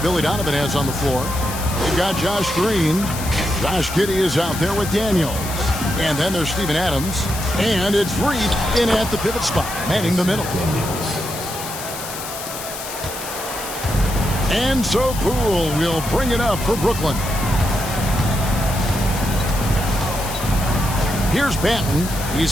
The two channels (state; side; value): noise; left; hiss, 9 dB below the sound